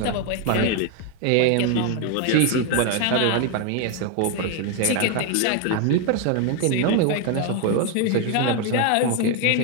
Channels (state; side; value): different; both; correlation 0.01